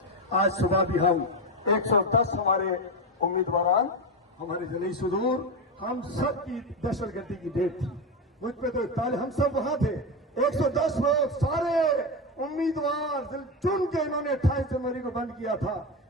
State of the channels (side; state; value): both; normal; correlation 0.14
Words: आज सुबह भी हम 110 हमारे उम्मीदवार, हमारे जली सुदूर, हम सब की दहशतगर्दी की डेट थी। मुझ पे तो ताले, हम सब वहां थे। 110 लोग सारे उम्मीदवार चुन के इन्होंने 28 जनवरी को बंद किया था।